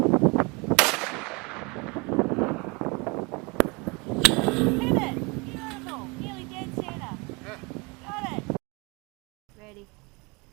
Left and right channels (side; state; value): left; quieter; 28.1 dB